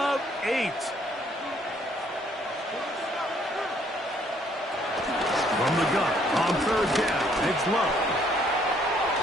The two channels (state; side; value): normal; both; correlation 0.65